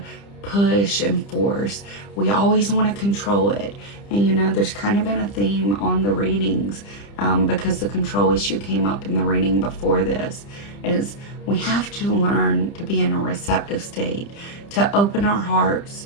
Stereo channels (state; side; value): late; right; 30 ms